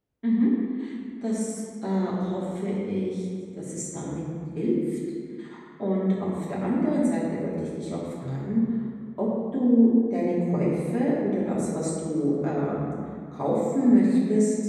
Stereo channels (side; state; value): both; identical; correlation 1.00